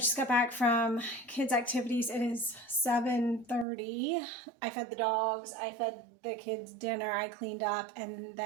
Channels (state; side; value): drops out; left; at 3.7 s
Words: got back from kids' activities. It is 7:30. I fed the dogs, I fed the kids dinner, I cleaned up, and